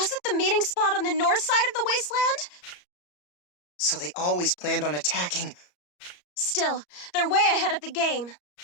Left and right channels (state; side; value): late; right; 34 ms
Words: the meeting spot on the north side of the wasteland? So they always planned on attacking. Still, they're way ahead of the game.